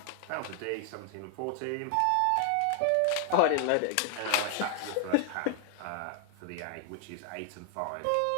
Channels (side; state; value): both; different; correlation 0.00